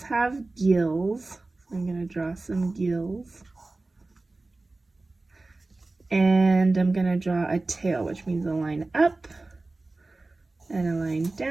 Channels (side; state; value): left; quieter; 3.2 dB